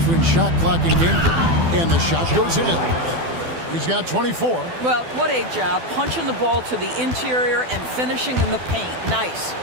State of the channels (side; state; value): left; late; 12 ms